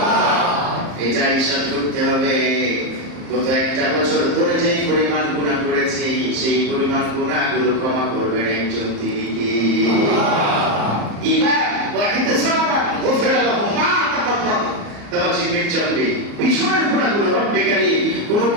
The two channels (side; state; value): left; late; 34 ms